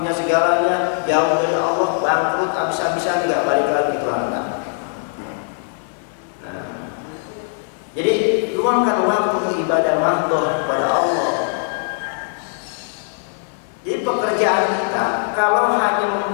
segalanya, jauh dari Allah, bangkrut, habis-habisan nggak balik lagi ke Tuhan. Jadi luangkan waktu untuk ibadah mahdoh kepada Allah. Jadi pekerjaan kita kalau hanya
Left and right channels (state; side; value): silent; right; digital silence